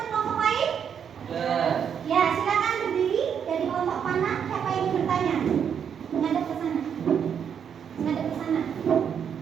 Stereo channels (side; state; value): left; quieter; 7.8 dB